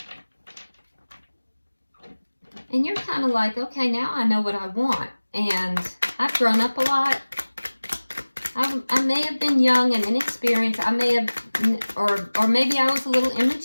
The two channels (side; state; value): both; inverted; correlation -1.00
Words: And you're kind of like, okay, now I know what I want. And I've grown up a lot. I may have been young and inexperienced. I may have, or maybe I was a little